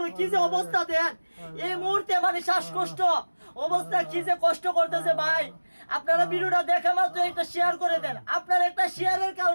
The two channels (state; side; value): inverted; both; correlation -1.00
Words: কি যে অবস্থা দেন এই মুহূর্তে, মানে শ্বাসকষ্ট অবস্থা, কি যে কষ্ট করতেছে ভাই। আপনারা ভিডিওটা দেখা মাত্র একটা শেয়ার করে দেন। আপনার একটা শেয়ারের